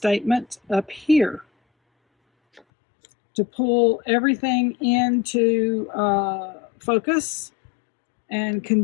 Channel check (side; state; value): right; drops out; at 2.6 s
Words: up here to pull everything into focus and